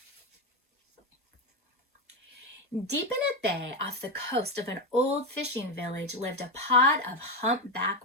Deep in a bay off the coast of an old fishing village lived a pod of humpback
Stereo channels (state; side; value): normal; both; correlation 0.11